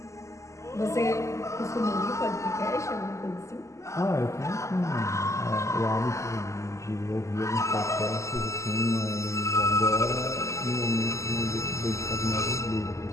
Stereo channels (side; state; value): right; late; 0.14 ms